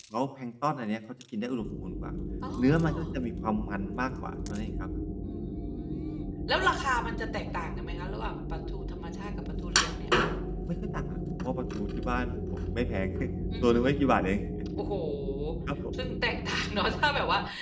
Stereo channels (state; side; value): identical; both; correlation 1.00